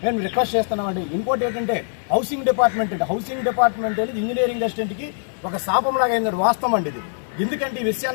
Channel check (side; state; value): right; silent; digital silence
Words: మేము రిక్వెస్ట్ చేస్తున్నామండి. ఇంకోటి ఏంటంటే హౌసింగ్ డిపార్ట్మెంట్ అనేది ఇంజనీరింగ్ అసిస్టెంట్కి ఒక శాపంలాగా అయింది. వాస్తవం అండి ఇది. ఎందుకంటే ఈ